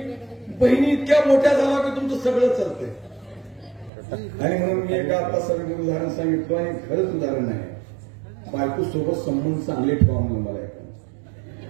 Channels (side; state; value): left; drops out; at 3.9 s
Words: बहिणी इतक्या मोठ्या झाला की तुमचं सगळं चालतंय. आणि म्हणून मी एका आता सगळं उदाहरण सांगितलं आणि खरंच उदाहरण आहे. बायको सोबत संबंध चांगले ठेवा म्हणून मला ऐका.